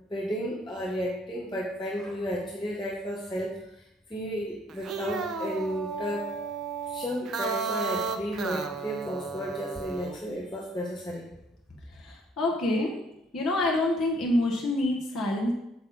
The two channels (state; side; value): normal; both; correlation 0.62